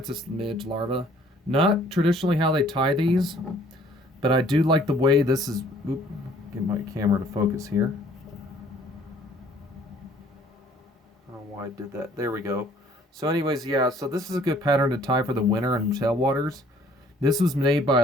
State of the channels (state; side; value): normal; both; correlation 0.58